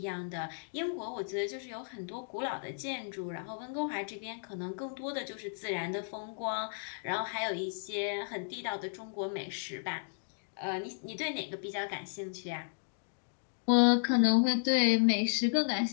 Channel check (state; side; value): silent; right; digital silence